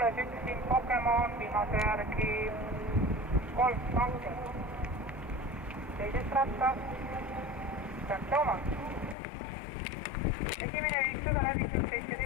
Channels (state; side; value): drops out; right; at 9.2 s